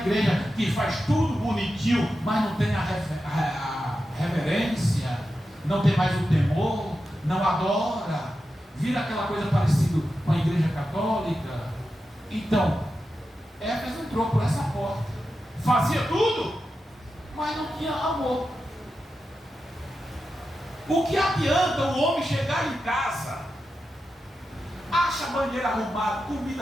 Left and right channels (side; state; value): both; normal; correlation 0.90